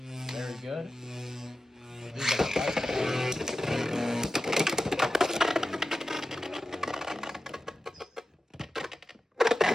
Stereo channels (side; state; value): both; normal; correlation 0.93